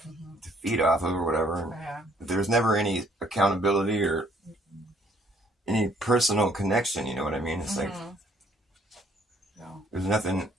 Feed off of or whatever. Yeah. There's never any accountability or any personal connection. You know what I mean? It's like there's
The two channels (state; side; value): normal; both; correlation 0.63